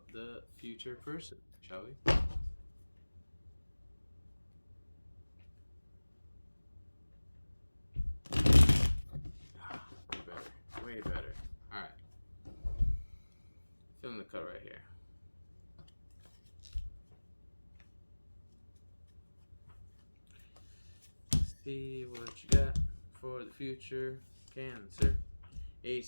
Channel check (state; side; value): inverted; both; correlation -1.00